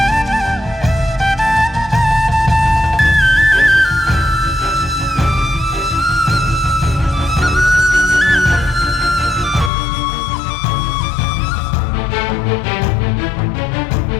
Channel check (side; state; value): right; drops out; at 9.7 s